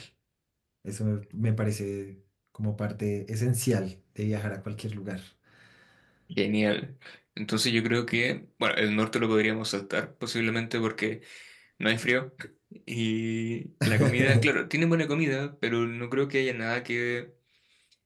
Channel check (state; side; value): identical; both; correlation 1.00